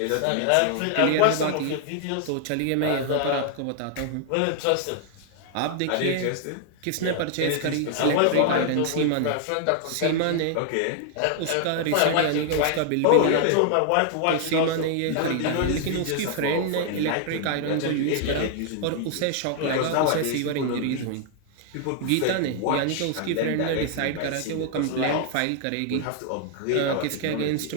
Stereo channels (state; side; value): different; both; correlation 0.00